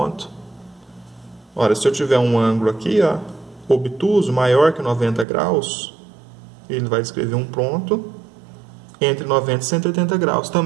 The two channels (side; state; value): left; drops out; at 5.2 s